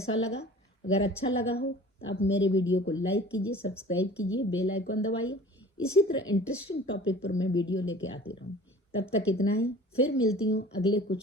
लगा? अगर अच्छा लगा हो तो आप मेरे वीडियो को लाइक कीजिए, सब्सक्राइब कीजिए, बेल आइकन दबाइए। इसी तरह इंटरेस्टिंग टॉपिक पर मैं वीडियो लेके आती रहूँ। तब तक इतना ही, फिर मिलती हूँ अगले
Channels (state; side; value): normal; both; correlation 0.44